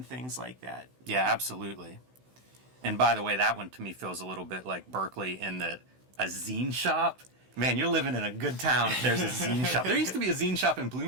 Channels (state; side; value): late; left; 16 ms